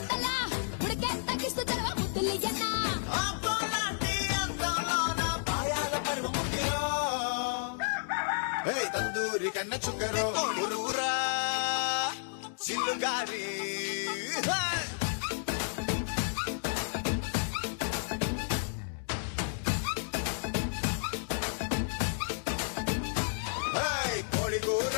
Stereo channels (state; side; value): silent; right; digital silence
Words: ఉడికే తగ్గిస్తూ తెరవ ముద్దులియన్న అబ్బోలాంటి అందంలోన పాయాల పరువ ముగ్గిరో తందూరి కన్న చుక్కరో ఊరూరా చిల్లుగారి కోడి కూర